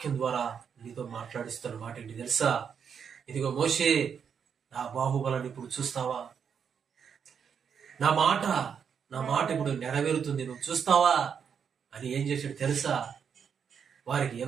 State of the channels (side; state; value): left; quieter; 7.2 dB